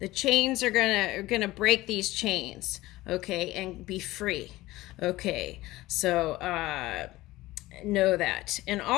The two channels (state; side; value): quieter; right; 18.0 dB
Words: chains are gonna break these chains, okay, and be free. Okay, so know that. And